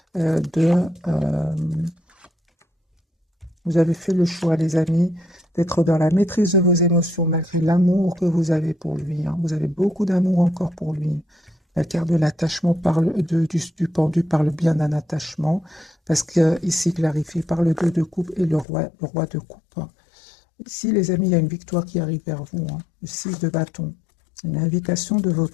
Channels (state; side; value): drops out; right; at 18.7 s